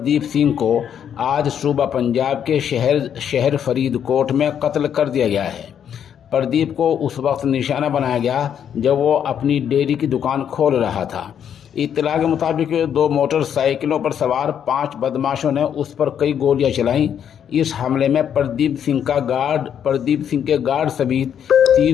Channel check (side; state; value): right; quieter; 8.8 dB